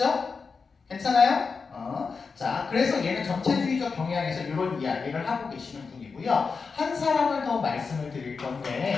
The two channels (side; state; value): right; quieter; 5.0 dB